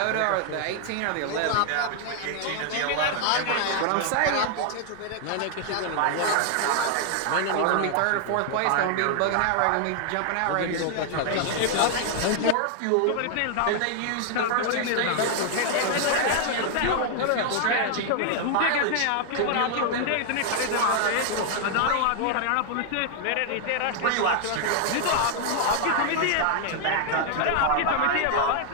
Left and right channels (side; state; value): both; different; correlation 0.00